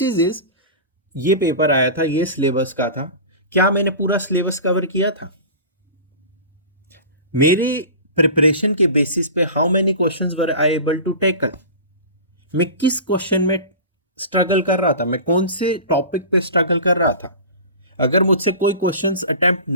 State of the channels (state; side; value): inverted; both; correlation -0.34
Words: is, ये पेपर आया था, ये सिलेबस का था, क्या मैंने पूरा सिलेबस कवर किया था? मेरी प्रिपरेशन के बेसिस पे how many questions were I able to tackle. मैं किस क्वेश्चन में स्ट्रगल कर रहा था, मैं कौन से टॉपिक पे स्ट्रगल कर रहा था. अगर मुझसे कोई क्वेश्चंस अटेम्प्ट